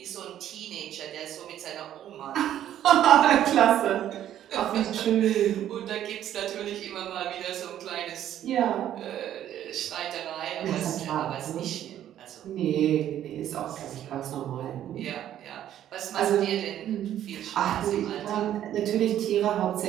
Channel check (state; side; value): quieter; left; 11.3 dB